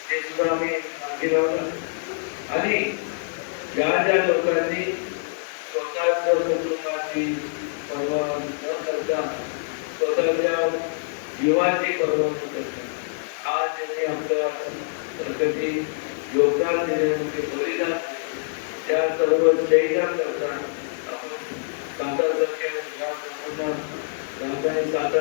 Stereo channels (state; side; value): silent; right; 62 dB below the other